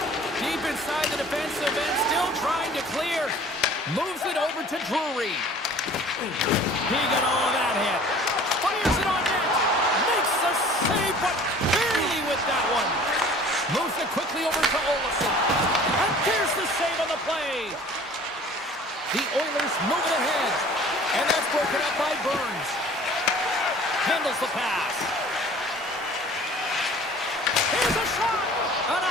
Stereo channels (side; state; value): both; normal; correlation 0.48